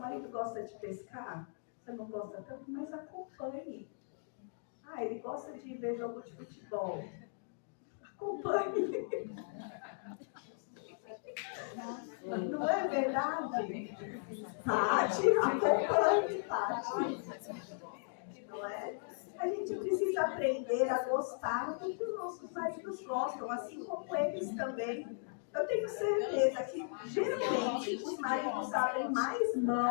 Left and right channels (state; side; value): silent; right; digital silence